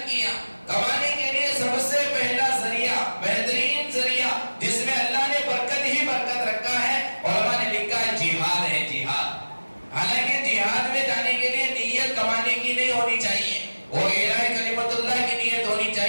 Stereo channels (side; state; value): both; inverted; correlation -1.00